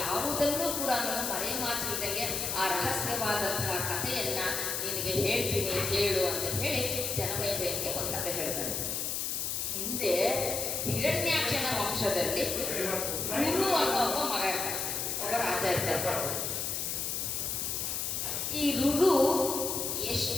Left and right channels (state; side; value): noise; left; hiss, 1 dB below the sound